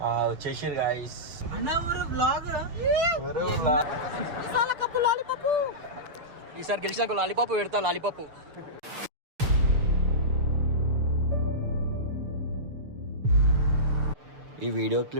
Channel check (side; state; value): left; late; 6.7 ms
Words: వచ్చేసారు గైస్. ఈసారి గెలిచినాక లాలీపాప్ పెడతా. లాలీపాప్ ఈ వీడియో